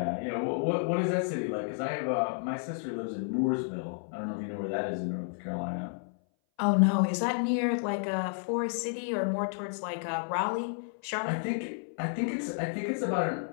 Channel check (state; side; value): silent; right; 57 dB below the other